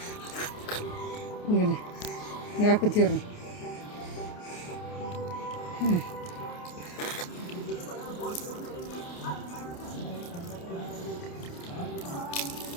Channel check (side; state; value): right; late; 28 ms